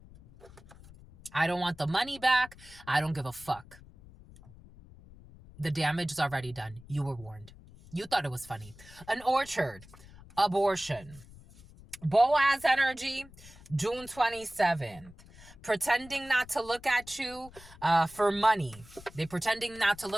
I don't want the money back. I don't give a fuck. The damage is already done. You were warned. You thought it was funny. An orchard. Abortion. Boaz energy. June 27th. Pretending not to look at you for money. They're pretending not to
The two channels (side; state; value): left; noise; rumble, 21 dB below the sound